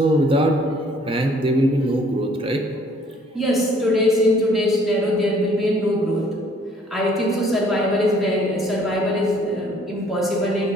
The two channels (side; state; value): both; normal; correlation 0.60